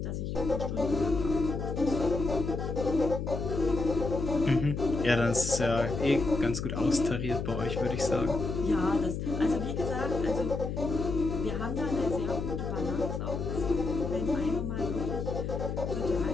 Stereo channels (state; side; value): noise; left; hum, 3 dB below the sound